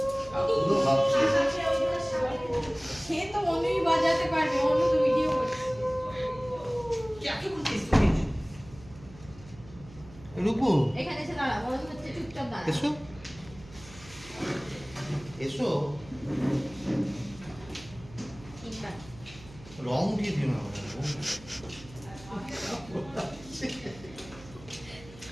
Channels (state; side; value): noise; right; hum, 20 dB below the sound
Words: তো অনুই বাজাতে পারবে, অনু তো ভিডিও করছে। রূপু এখানে এসে দাঁড়া, বড় হচ্ছে, চুপচাপ দাঁড়া। এসো এসো। রং উঠিয়ে দিও না।